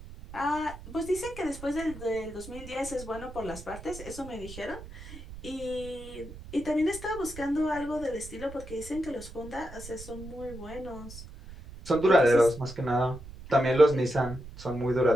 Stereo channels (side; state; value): right; noise; rumble, 14 dB below the sound